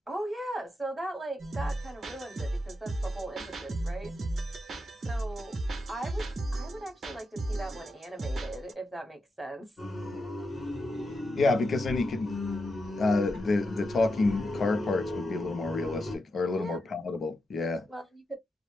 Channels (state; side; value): normal; both; correlation 0.86